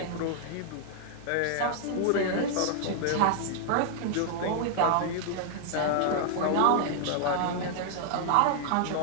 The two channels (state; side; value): different; both; correlation 0.00